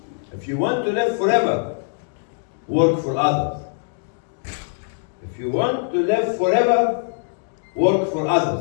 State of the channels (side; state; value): right; silent; digital silence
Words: If you want to live forever, work for others. If you want to live forever, work for